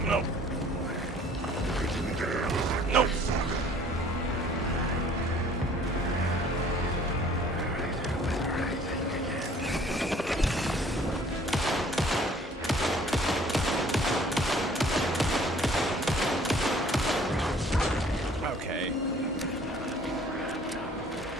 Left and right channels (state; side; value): normal; both; correlation 0.55